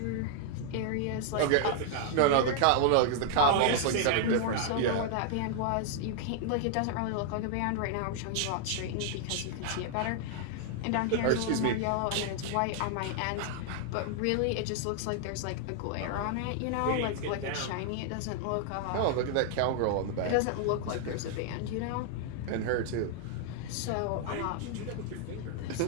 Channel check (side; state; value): both; different; correlation 0.00